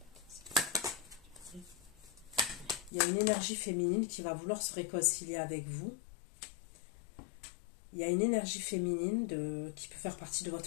Il y a une énergie féminine qui va vouloir se réconcilier avec vous. Il y a une énergie féminine qui peut faire partie de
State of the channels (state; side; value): drops out; right; at 2.9 s